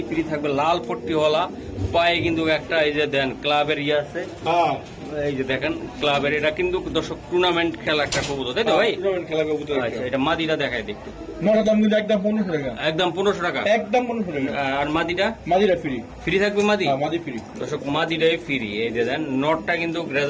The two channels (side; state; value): both; identical; correlation 1.00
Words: ফ্রি থাকবে, লাল পট্টিওয়ালা। পায়ে কিন্তু একটা এই যে দেন ক্লাবের ইয়ে আছে, এই যে দেখেন ক্লাবের। এটা কিন্তু দর্শক টুর্নামেন্ট খেলা একটা কবুতর, তাই তো ভাই? খেলা কবুতর। আচ্ছা, এটা মাদিটা দেখায় দেখতে। দাম কিন্তু একদম 1500 টাকা, একদম 1500 টাকা, একদম 1500 টাকা। আর মাদিটা ফ্রি থাকবে। মাদি ফ্রি দর্শক, মাদিটাই ফ্রি। এই যে দেন নটটা কিন্তু